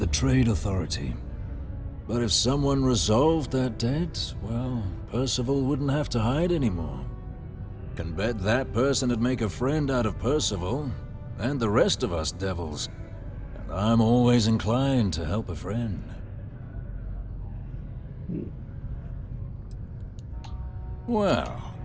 Trade Authority. But if someone resolved that debt, well, Percival wouldn't have to hide anymore. Can bet that person would make a friend out of Percival, and the rest of us devils. And I'm always inclined to help a friend. Well,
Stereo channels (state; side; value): identical; both; correlation 1.00